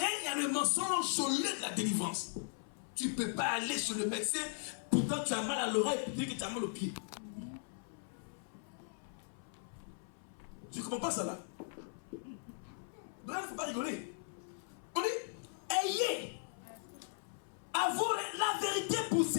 il y a le mensonge au lieu de la délivrance. Tu ne peux pas aller chez le médecin, pourtant tu as mal à l'oreille et puis que tu as mal au pied. Tu ne comprends pas ça là? Donc il ne faut pas rigoler. On dit, ayez avoir la vérité pour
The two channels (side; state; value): right; silent; 52 dB below the other